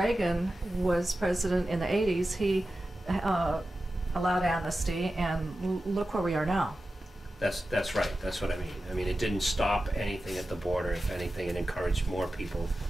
was president in the 80s. He allowed amnesty, and look where we are now. That's right. That's what I mean. I mean, it didn't stop anything at the border. If anything, it encouraged more people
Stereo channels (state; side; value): normal; both; correlation 0.93